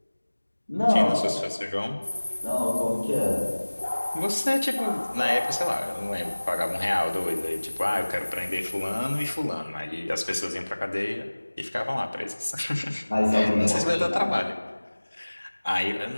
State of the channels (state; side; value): inverted; both; correlation -1.00